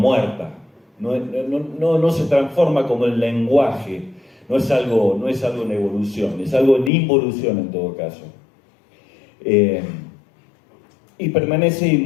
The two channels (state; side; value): drops out; right; at 6.9 s